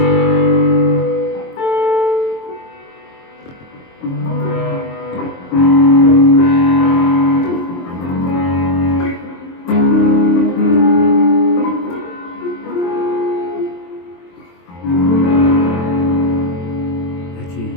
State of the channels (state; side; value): late; right; 23 ms